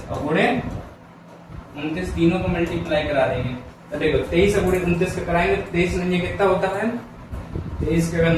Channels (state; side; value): identical; both; correlation 1.00